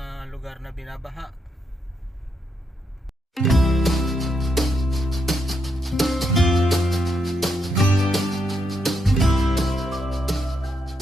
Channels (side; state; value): both; normal; correlation 0.80